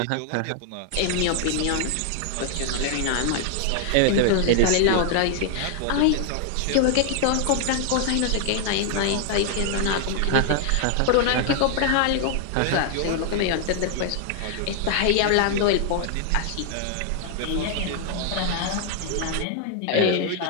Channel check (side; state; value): both; different; correlation 0.00